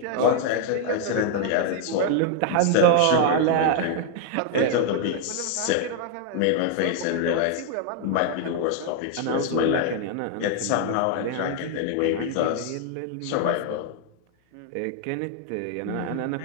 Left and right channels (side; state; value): both; different; correlation 0.00